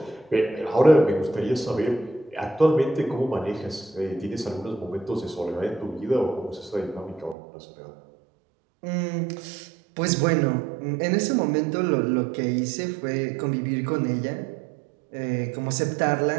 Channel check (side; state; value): left; drops out; at 7.4 s